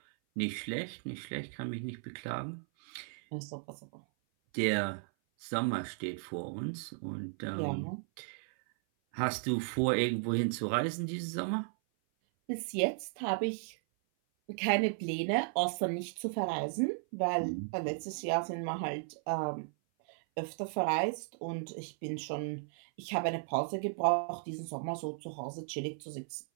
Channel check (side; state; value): left; silent; 54 dB below the other